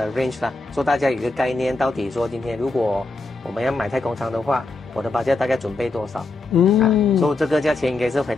range 啦，说大家有一个概念，到底说今天如果我们要买太空舱的话，我的budget大概准备多少？所以这个价钱应该是回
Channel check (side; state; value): right; quieter; 3.2 dB